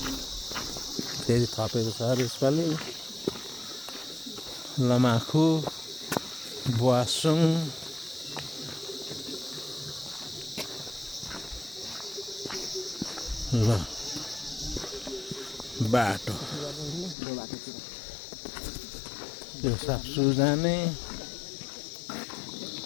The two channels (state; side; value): drops out; right; at 17.2 s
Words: फेरि थपेको छ अरे यसपालि। लमाखु, बुवासुङ, ल बाटो यो साप्सु जाने,